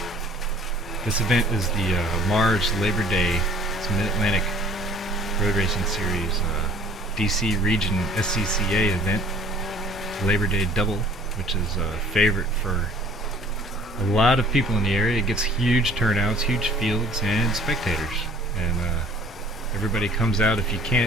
This event is the Mars LaborDay. It's a Mid-Atlantic Road Racing Series DC Region SCCA event, LaborDay Double, which is a favorite for a lot of people in the area. It gets huge turnouts, huge fields, and spectators, and everybody comes out. If you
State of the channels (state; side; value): normal; both; correlation 0.52